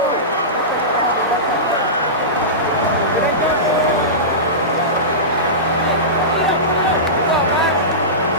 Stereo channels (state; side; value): normal; both; correlation -0.19